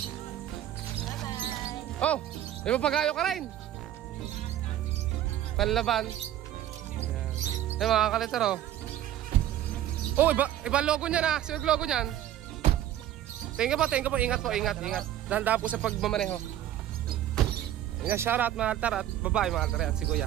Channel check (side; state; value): left; quieter; 12.1 dB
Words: Oh, may papagayo ka rin. Panlaban. Ayan. Ay mga kalitar oh. Oh, iba logo niyan ah. Sino logo niyan? Tingnan po. Ingat. Dahan-dahan po sa pagmamaneho. Yan, shoutout mga altar at babae mga altar at si